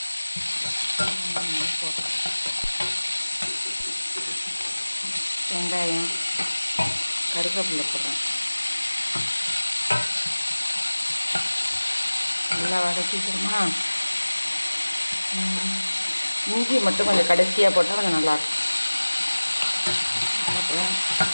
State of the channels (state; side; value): inverted; both; correlation -1.00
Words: வெங்காயம், கருவேப்பிலை போடுறேன். நல்லா வதக்கிக்கிறோமா. இஞ்சி மட்டும் கொஞ்சம் கடைசியாக போட்டால் கொஞ்சம் நல்லாயிருக்கும்.